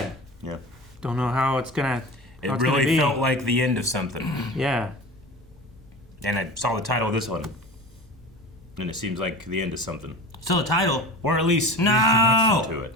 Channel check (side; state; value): both; normal; correlation 0.34